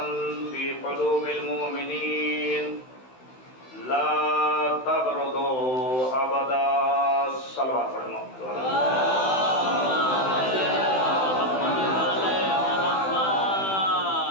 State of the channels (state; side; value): late; right; 16 ms